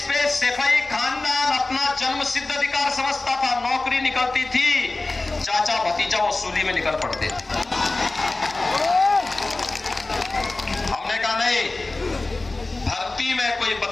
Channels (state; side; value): quieter; right; 3.1 dB